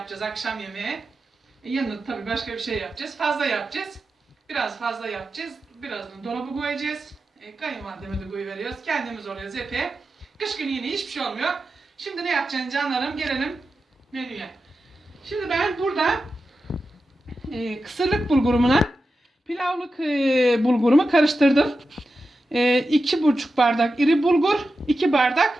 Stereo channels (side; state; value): both; normal; correlation 0.91